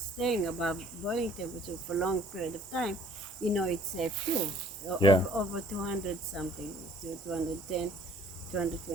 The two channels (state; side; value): normal; both; correlation 0.56